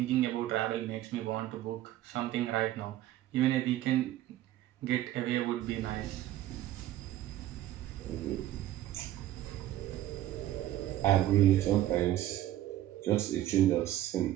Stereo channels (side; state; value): left; quieter; 13.7 dB